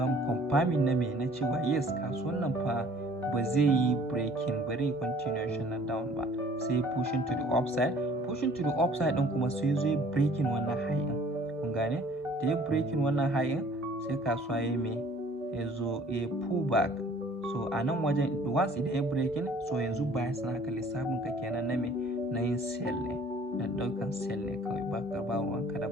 mu confirming na me na cewa yes kasuwan nan fa ba zai yi breaking, bari continuation na down ba, sai pushing to the upside din kuma sai zo ya breaking wannan high din. Kun gane? Da ya breaking wannan high din sai kasuwa ya me ya zo ya pull back. So a nan wajen once idan ya breaking, so yanzu bias naka lissafin ka kenan na me na yin sell ne, da daukan sell ne kawai, ba ka ba ruwanka da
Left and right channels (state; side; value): normal; both; correlation 0.53